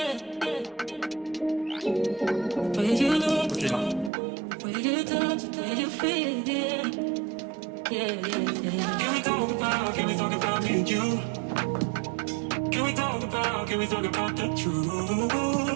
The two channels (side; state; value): left; drops out; at 4.1 s